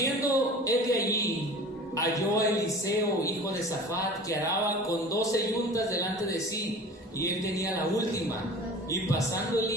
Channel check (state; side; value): normal; both; correlation 0.40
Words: él de allí, halló a Eliseo, hijo de Safat, que araba con 12 yuntas delante de sí, y él tenía la última. Y pasando